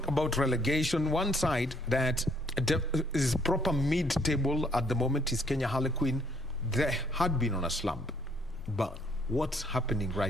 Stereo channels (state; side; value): normal; both; correlation 0.65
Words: about relegation. One side that is proper mid-table at the moment is Kenya Harlequin. They had been on a slump, but what's happening